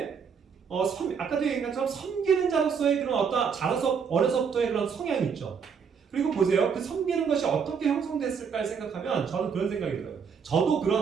아까도 얘기한 것처럼 섬기는 자로서의 그런 어려서부터의 그런 성향이 있죠. 그리고 보세요. 그 섬기는 것이 어떻게 형성됐을까 생각하면 저는 그런 생각이 들어요. 저도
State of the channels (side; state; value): left; quieter; 6.4 dB